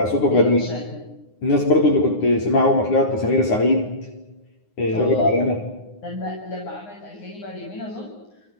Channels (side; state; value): right; late; 9.7 ms